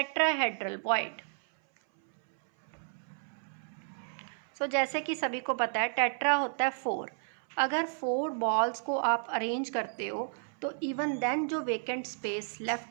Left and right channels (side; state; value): left; silent; 56 dB below the other